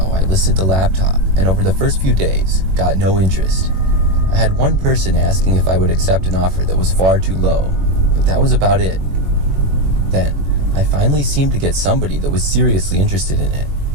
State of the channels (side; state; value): left; late; 21 ms